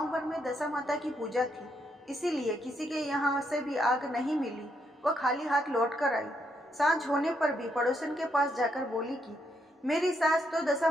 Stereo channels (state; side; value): normal; both; correlation 0.77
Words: भर में दशा माता की पूजा थी, इसीलिए किसी के यहाँ से भी आग नहीं मिली। वह खाली हाथ लौट कर आई। सांझ होने पर भी पड़ोसन के पास जाकर बोली कि मेरी सास तो दशा